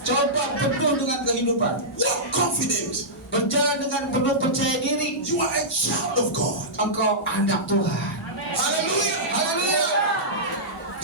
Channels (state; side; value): normal; both; correlation -0.14